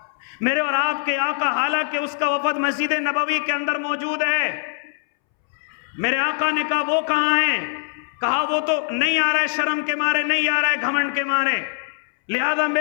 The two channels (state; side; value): silent; right; 64 dB below the other